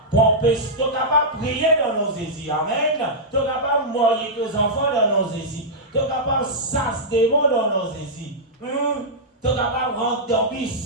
Tu es capable de prier dans nos désirs. Amen. Tu es capable de mourir tes enfants dans nos désirs. Tu es capable de sasser des mots dans nos désirs. Tu es capable de rentrer dans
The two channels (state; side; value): normal; both; correlation -0.10